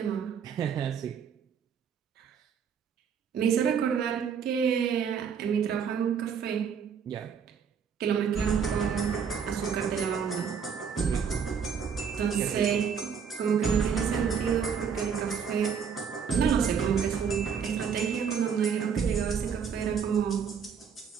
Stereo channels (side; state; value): left; quieter; 7.0 dB